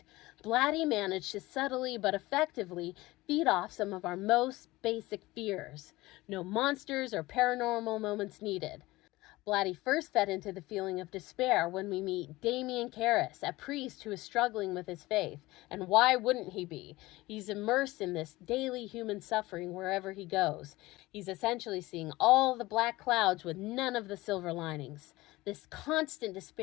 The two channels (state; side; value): quieter; right; 19.5 dB